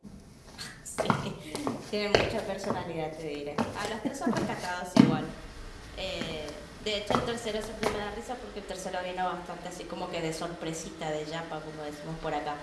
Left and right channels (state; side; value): identical; both; correlation 1.00